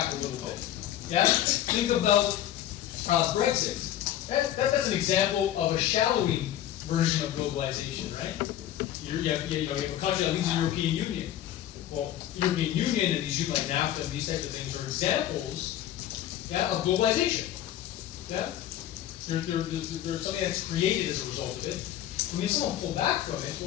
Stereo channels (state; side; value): quieter; right; 12.1 dB